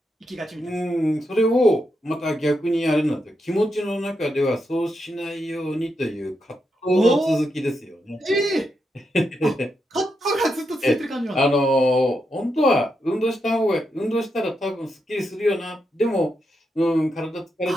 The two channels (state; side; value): normal; both; correlation 0.84